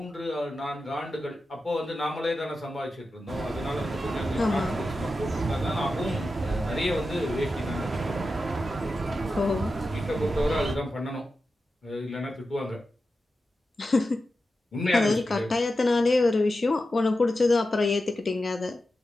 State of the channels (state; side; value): normal; both; correlation 0.91